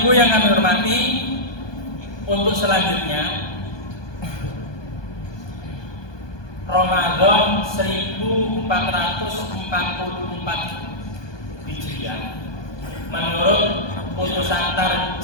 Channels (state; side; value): late; right; 1.2 ms